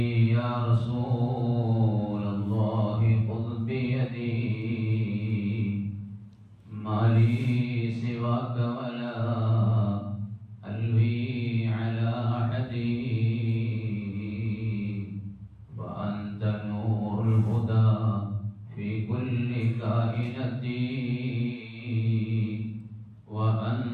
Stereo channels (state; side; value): identical; both; correlation 1.00